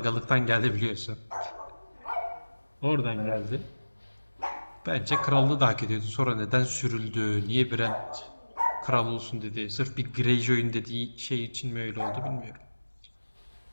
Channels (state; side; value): inverted; both; correlation -1.00